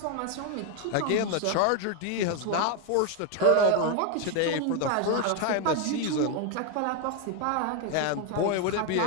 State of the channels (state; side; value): different; both; correlation 0.01